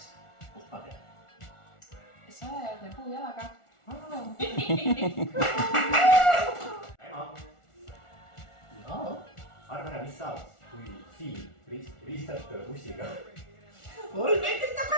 Kust ma tean? Sajajalgne puujalaga. Ema. Jaa. Arva ära, mis saab, kui siin ristad bussiga. 3 meetrit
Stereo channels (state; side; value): late; right; 1.4 ms